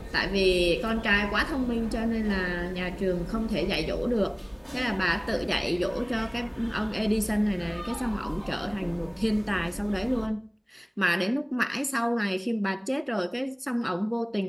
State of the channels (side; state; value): both; identical; correlation 1.00